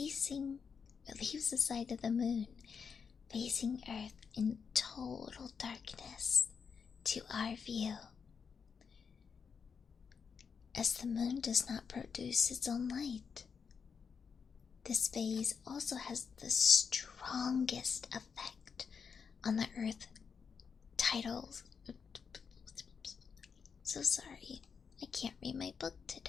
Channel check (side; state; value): right; quieter; 6.1 dB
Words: the moon facing Earth in total darkness to our view, as the moon does not produce its own light. This phase also has the strongest effect on the Earth titles. So sorry, I can't read my book